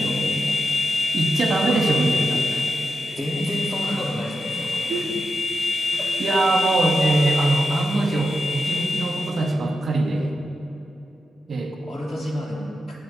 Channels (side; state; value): both; normal; correlation 0.89